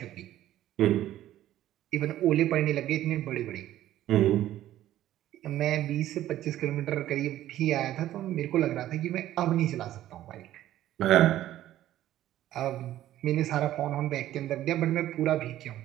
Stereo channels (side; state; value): left; quieter; 13.3 dB